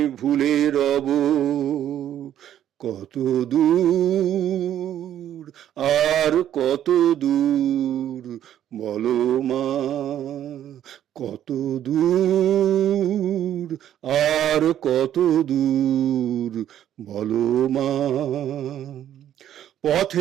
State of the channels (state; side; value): quieter; left; 11.0 dB